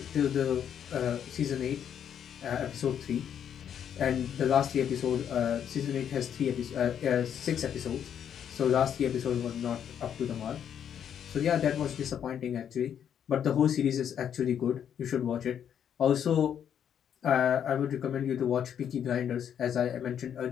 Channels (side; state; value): right; quieter; 8.9 dB